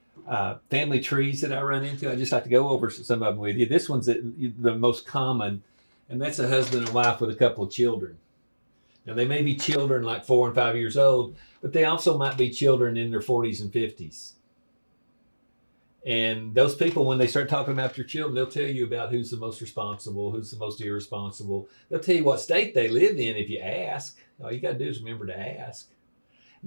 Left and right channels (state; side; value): inverted; both; correlation -1.00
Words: family trees that I run into. I just like to go over some of them with you. This one's the most common, and that's a husband and wife with a couple of children. Now, they may be children like 4 and 5 years old, but they also might be children in their 40s and 50s. And those people, when they start talking about their children, they'll tell you about who's the most responsible, who's the most irresponsible. They'll tell you what state they live in if you ask. All you got to do is remember to ask.